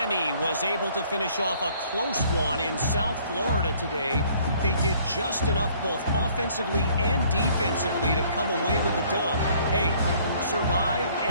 was able to finish off a close one in South Florida today. They did just enough both offensively and defensively to come away with the dub. Hey, survive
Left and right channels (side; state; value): both; inverted; correlation -0.59